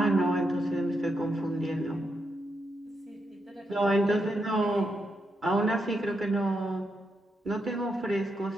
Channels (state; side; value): normal; both; correlation 0.82